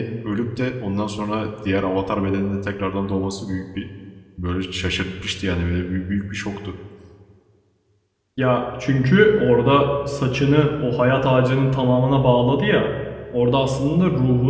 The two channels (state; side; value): identical; both; correlation 1.00